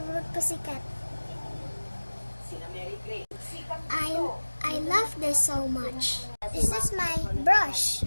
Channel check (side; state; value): both; inverted; correlation -1.00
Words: pussycat. I love this so much. This is my brush.